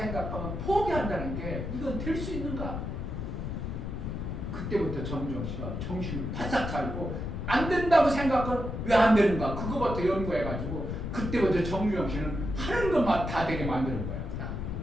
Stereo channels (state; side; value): noise; left; rumble, 4 dB below the sound